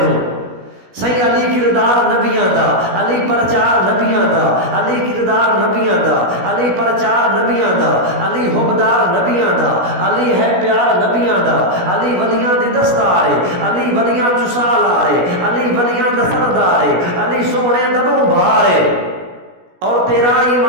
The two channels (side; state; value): left; late; 17 ms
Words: صحیح علی کردار نبیاں دا علی پرچار نبیاں دا علی کردار نبیاں دا علی پرچار نبیاں دا علی حبدار نبیاں دا علی ہے پیار نبیاں دا علی ولیاں دی دستارے علی ولیاں چسالارے علی ولیاں دا سردارے علی سونے دبوں بھارے اور تیرا